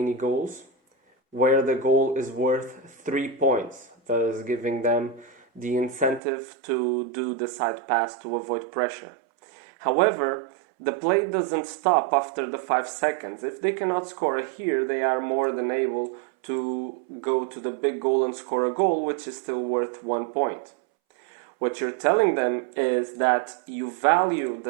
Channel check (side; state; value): left; drops out; at 6.2 s